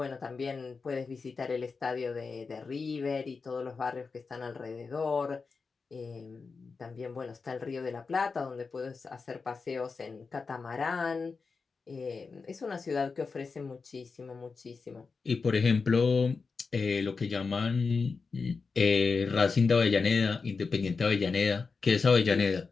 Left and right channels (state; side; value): quieter; right; 4.7 dB